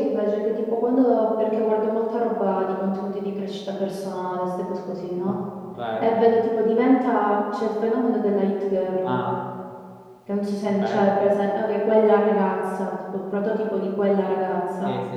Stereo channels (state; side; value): identical; both; correlation 1.00